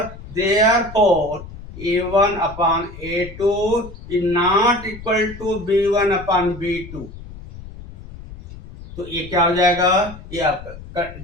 therefore A1/A2 is not equal to B1/B2। तो ये क्या हो जाएगा, ये आपका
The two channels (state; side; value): noise; left; rumble, 15 dB below the sound